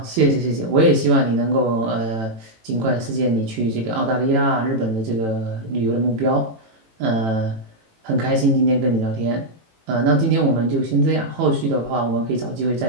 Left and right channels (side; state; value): left; late; 18 ms